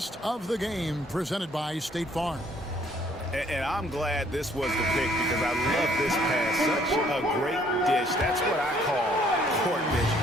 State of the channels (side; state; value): both; normal; correlation 0.62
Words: of the game presented by State Farm. And I'm glad this was the pick because I love this pass. Such a great dish. That's what I call court vision.